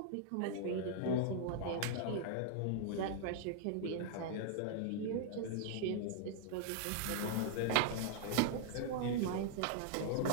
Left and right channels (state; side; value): different; both; correlation -0.01